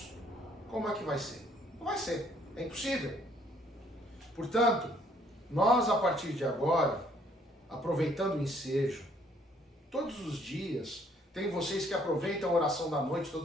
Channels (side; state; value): both; normal; correlation 0.64